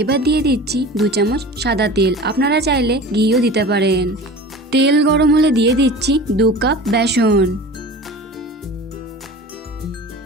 এবার দিয়ে দিচ্ছি 2 চামচ সাদা তেল, আপনারা চাইলে ঘিও দিতে পারেন। তেল গরম হলে দিয়ে দিচ্ছি 2 কাপ বেসন।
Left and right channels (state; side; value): normal; both; correlation 0.37